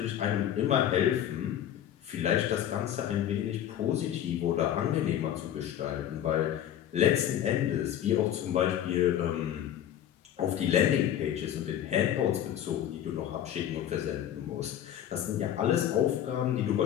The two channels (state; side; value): quieter; right; 10.8 dB